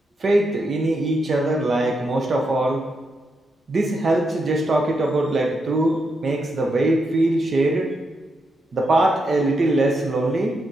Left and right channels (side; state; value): both; normal; correlation 0.83